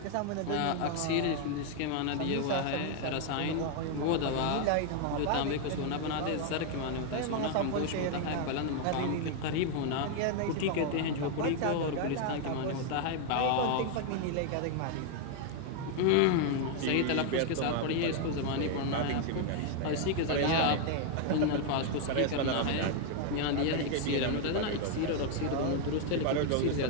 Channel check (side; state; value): both; different; correlation 0.00